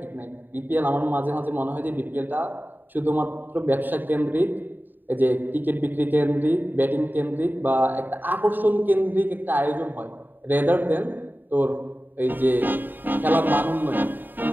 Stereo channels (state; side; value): late; left; 0.091 ms